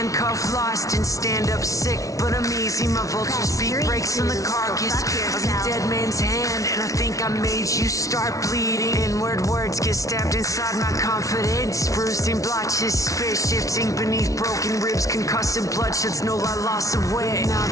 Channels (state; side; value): late; right; 0.17 ms